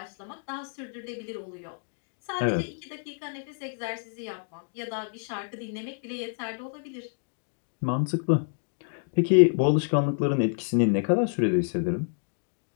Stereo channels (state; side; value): silent; right; digital silence